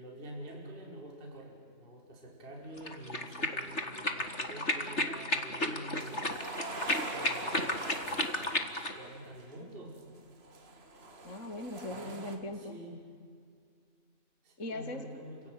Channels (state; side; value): late; right; 3.3 ms